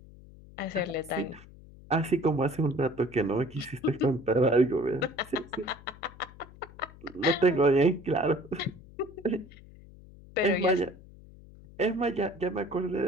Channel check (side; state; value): left; noise; hum, 20 dB below the sound